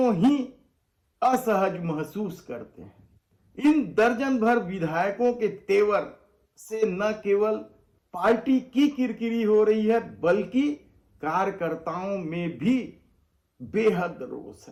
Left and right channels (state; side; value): identical; both; correlation 1.00